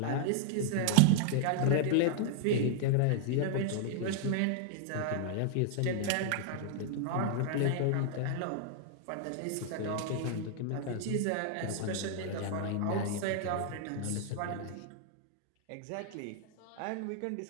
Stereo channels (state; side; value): different; both; correlation 0.00